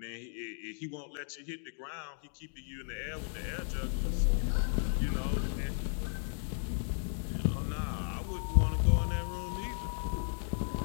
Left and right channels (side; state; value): right; silent; digital silence